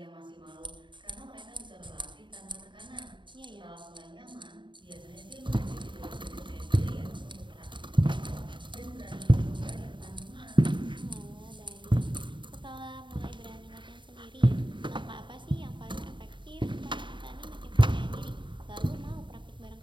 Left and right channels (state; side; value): late; left; 0.23 ms